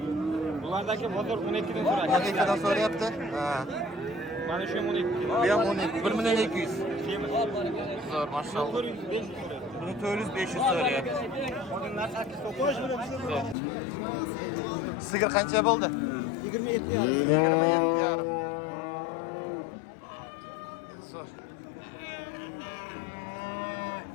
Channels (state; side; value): drops out; right; at 13.6 s